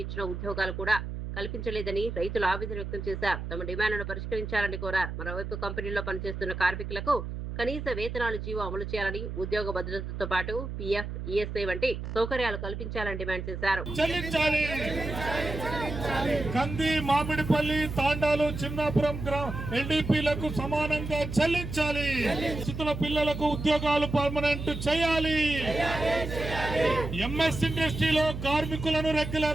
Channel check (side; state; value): right; noise; hum, 6 dB below the sound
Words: ఇచ్చిన ఉద్యోగాలు కూడా కల్పించలేదని రైతులు ఆవేదన వ్యక్తం చేశారు. తమ డిమాండ్లను పరిష్కరించాలని కోరారు. మరోవైపు కంపెనీల్లో పనిచేస్తున్న కార్మికులకు కనీస వేతనాలు జీవో అమలు చేయాలని, ఉద్యోగ భద్రతతో పాటు పీఎఫ్, ఈఎస్ఐ వంటి సౌకర్యాలు కల్పించాలని డిమాండ్ చేశారు. కంది, మామిడిపల్లి, తాండాలు, చిన్నాపురం ఎన్డీపీలకు సమానంగా చెల్లించాలి. స్థితుల పిల్లలకు ఉద్యోగాలు పర్మనెంట్ చేయాలి. ఎంఎస్ ఇండస్ట్రీలో కార్మికులను